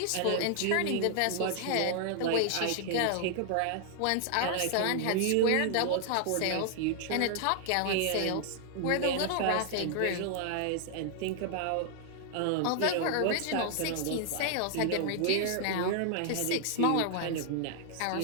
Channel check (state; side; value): different; both; correlation 0.00